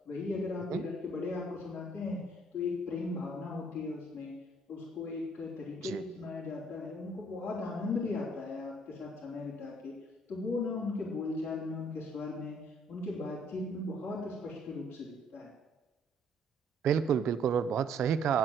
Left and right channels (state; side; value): normal; both; correlation 0.63